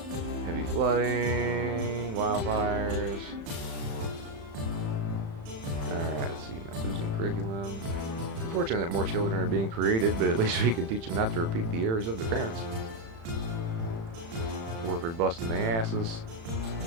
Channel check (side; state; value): left; late; 36 ms